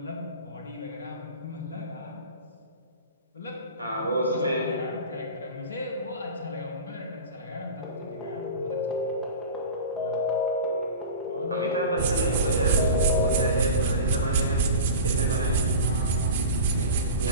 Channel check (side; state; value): both; inverted; correlation -0.32